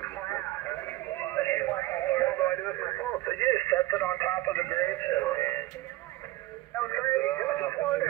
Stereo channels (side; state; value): left; quieter; 17.5 dB